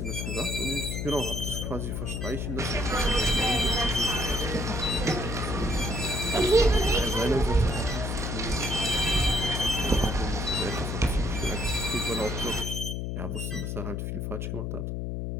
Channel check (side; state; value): left; noise; hum, 3 dB below the sound